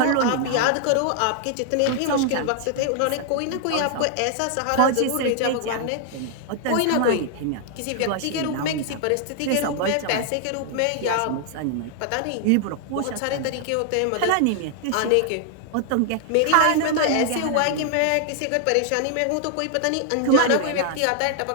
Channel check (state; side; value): different; both; correlation 0.00